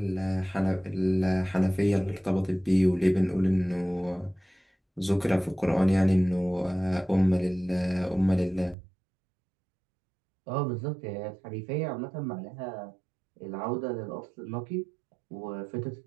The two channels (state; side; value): drops out; left; at 8.8 s